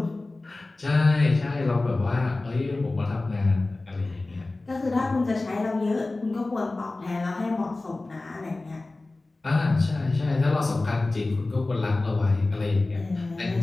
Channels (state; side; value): quieter; right; 3.1 dB